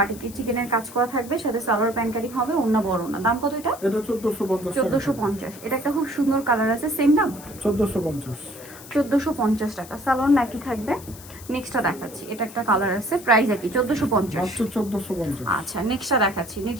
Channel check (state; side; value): noise; left; hiss, 17 dB below the sound